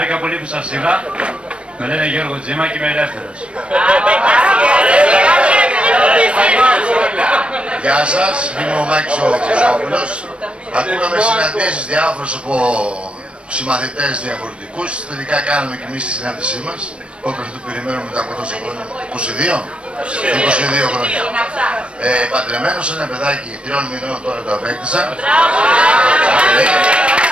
πολύ που σας είδα. Με λένε Γιώργο Τζίμα και είμαι ελεύθερος. Γεια σας, είμαι ο Μάκης ο Χρυσόπουλος. Ακούγαμε συναντήσεις διάφορους από συμμαθητές διαφορετικούς. Τελικά κάναμε και εμείς τη συνάντησή μας. Όπως το περιμένουμε μετά από τόσο χρόνια. 22 χρόνια. Παντρεμένος, ένα παιδάκι 3 μηνών τώρα το απέκτησα.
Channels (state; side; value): late; left; 0.058 ms